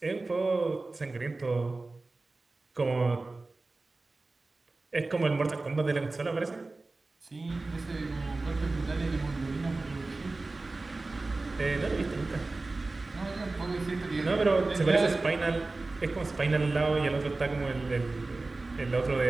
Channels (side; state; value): left; quieter; 3.3 dB